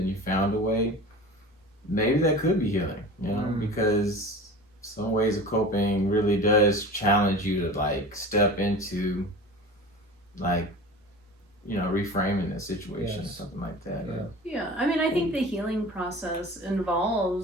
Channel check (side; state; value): both; normal; correlation 0.36